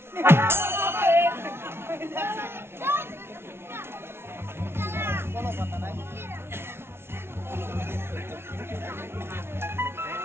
কোনো কথা নাই।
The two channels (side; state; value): left; late; 0.12 ms